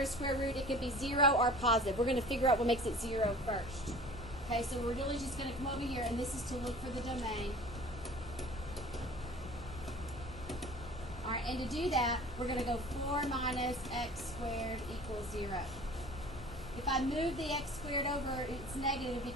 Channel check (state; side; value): normal; both; correlation 0.44